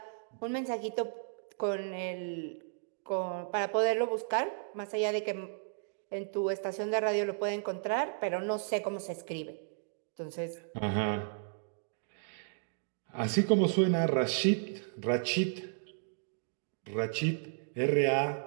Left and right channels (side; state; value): left; silent; digital silence